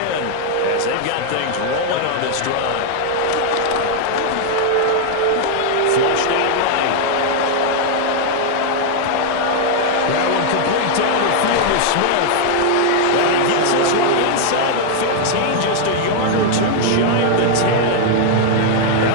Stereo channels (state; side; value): different; both; correlation 0.00